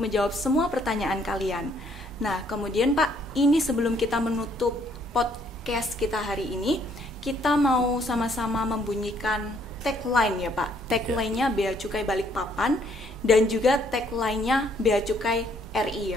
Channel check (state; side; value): normal; both; correlation 0.66